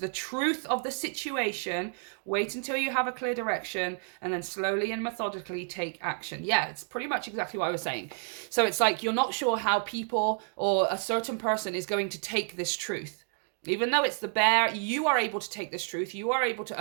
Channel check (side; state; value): left; silent; 58 dB below the other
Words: truth of the situation. Wait until you have a clear direction, and then slowly and methodically take action. Yeah, it's pretty much exactly what I was saying. So it's like you're not sure how people or a certain person is going to take this truth. Even though it's the bear, you are able to take this truth. You are able to